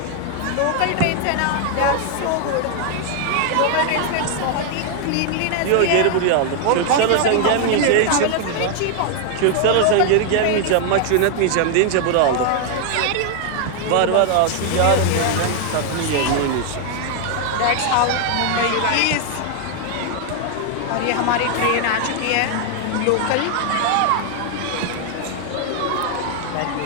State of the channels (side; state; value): both; different; correlation 0.00